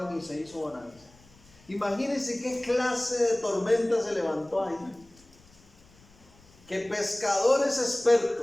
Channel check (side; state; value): left; noise; rumble, 27 dB below the sound